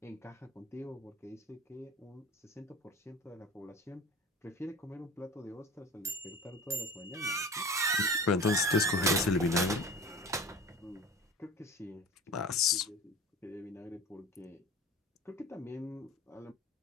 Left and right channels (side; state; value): both; normal; correlation 0.37